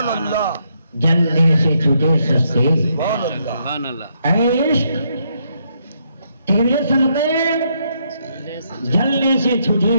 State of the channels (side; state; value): both; inverted; correlation -0.76